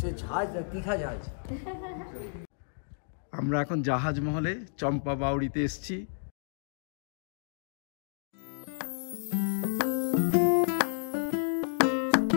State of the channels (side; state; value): right; silent; digital silence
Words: से जहाज तीखा जहाज আমরা এখন জাহাজ মহলে চম্পা বাউড়িতে এসেছি।